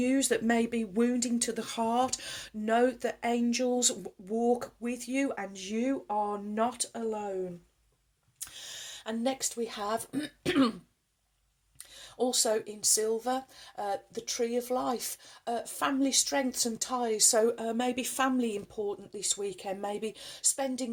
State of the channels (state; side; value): identical; both; correlation 1.00